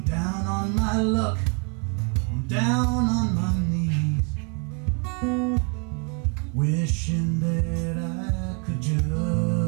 down on my luck, I'm down on my knees, wishing that I could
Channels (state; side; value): quieter; left; 37.2 dB